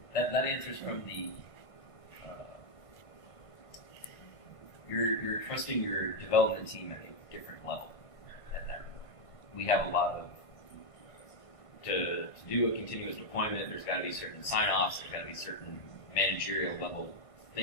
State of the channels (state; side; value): late; right; 1.5 ms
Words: That answers from the. You're trusting your development team at a different level. At that point, we have a lot of to do a continuous deployment. There's got to be certain sign-offs. There's got to be certain managerial level